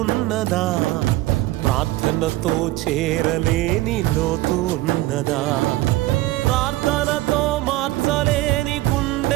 ఉన్నదా, ప్రార్థనతో చేరలేని లోతు ఉన్నదా, ప్రార్థనతో మార్చలేని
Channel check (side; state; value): left; quieter; 17.5 dB